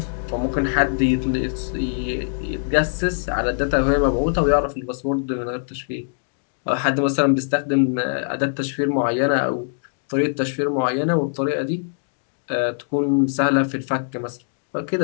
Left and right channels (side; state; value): right; silent; digital silence